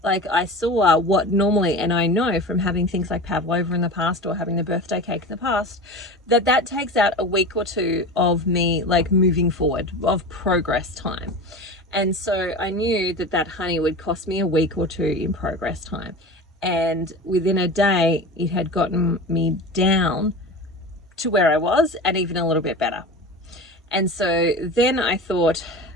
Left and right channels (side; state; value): both; normal; correlation 0.31